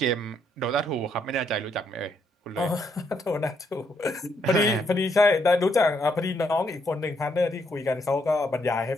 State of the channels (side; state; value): both; normal; correlation 0.74